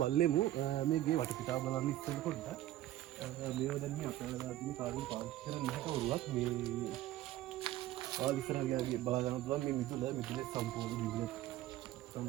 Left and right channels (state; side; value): quieter; left; 14.4 dB